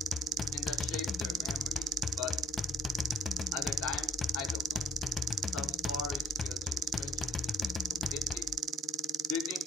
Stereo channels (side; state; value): both; normal; correlation 0.54